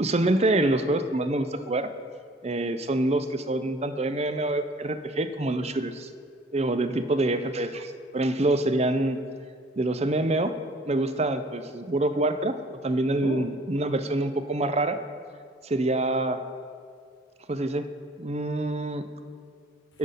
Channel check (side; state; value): both; normal; correlation 0.53